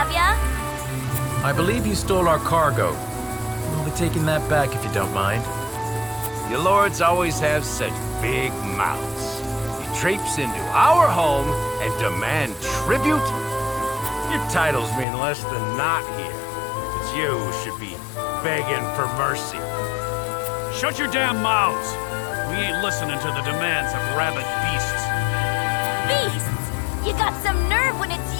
ya? I believe you stole our cargo. We'll be taking that back if you don't mind. You lords always have such big mouths. You traipse into our home and demand tribute? Your titles mean less than not here. It's you who should be begging for mercy. Shut your damn mouths! We ain't listening to the demands of rabid beasts. Beasts? You got some nerve when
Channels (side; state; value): right; drops out; at 15.1 s